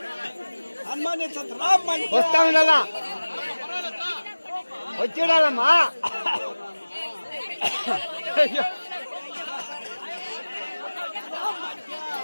వస్తా ఉండాలా వచ్చేడాలమ్మా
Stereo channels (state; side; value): inverted; both; correlation -1.00